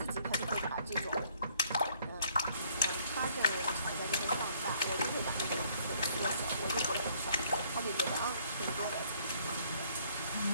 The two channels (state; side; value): inverted; both; correlation -0.64